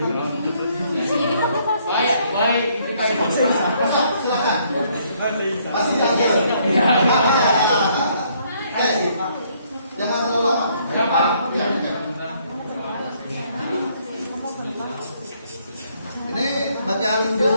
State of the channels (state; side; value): inverted; both; correlation -0.67